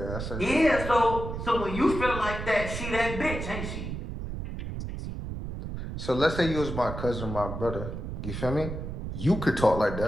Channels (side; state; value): right; noise; rumble, 6 dB below the sound